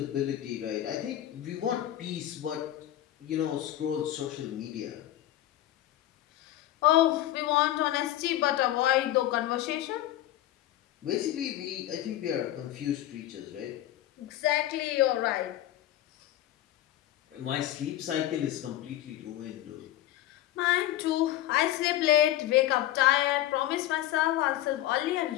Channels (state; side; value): quieter; right; 13.8 dB